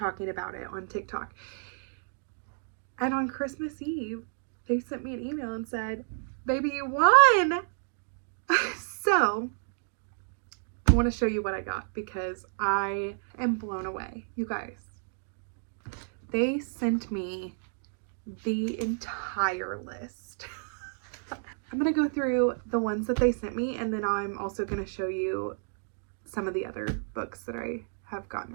about it on TikTok. And on Christmas Eve, they sent me an email and said, baby, you won. So I want to show you what I got because I am blown away. You guys, they sent me the entire list. I'm going to go through the ones that they sent me, and then I'm also going to show you some of the other books that I have gotten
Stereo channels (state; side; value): silent; left; digital silence